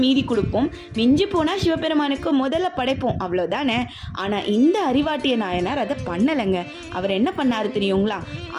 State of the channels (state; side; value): identical; both; correlation 1.00